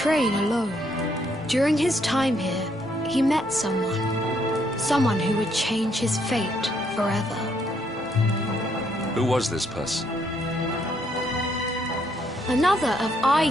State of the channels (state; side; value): normal; both; correlation 0.72